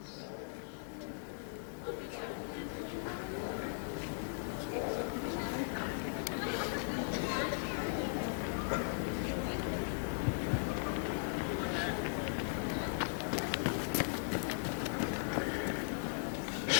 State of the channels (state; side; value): silent; right; digital silence